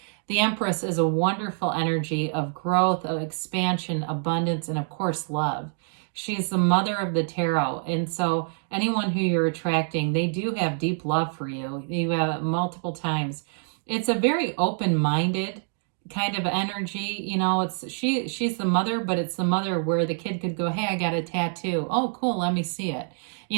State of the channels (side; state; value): left; silent; 59 dB below the other